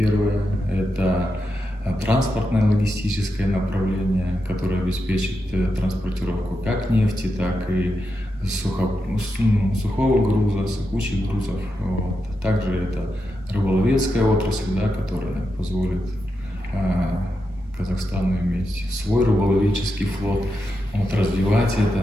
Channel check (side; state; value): both; normal; correlation 0.87